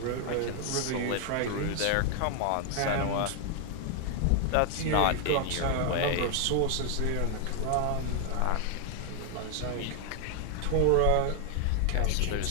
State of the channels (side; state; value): both; different; correlation 0.00